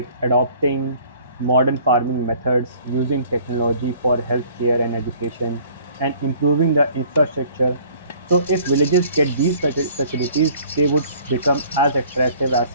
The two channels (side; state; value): both; inverted; correlation -0.54